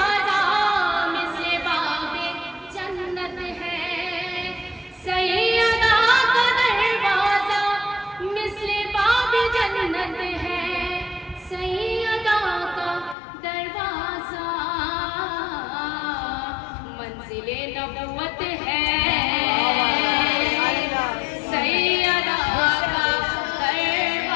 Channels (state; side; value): drops out; right; at 13.2 s